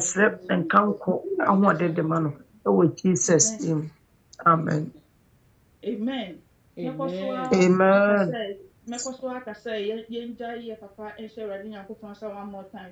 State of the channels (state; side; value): identical; both; correlation 1.00